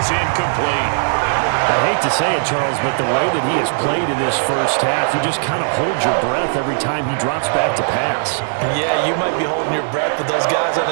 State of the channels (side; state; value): left; silent; 67 dB below the other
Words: incomplete. I hate to say it, Charles, but the way that he has played in this first half, you just kind of hold your breath every time he drops back to pass. Yeah, you might be holding your breath, but those guys on